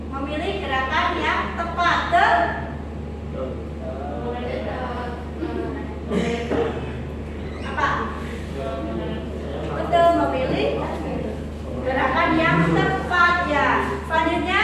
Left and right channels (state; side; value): identical; both; correlation 1.00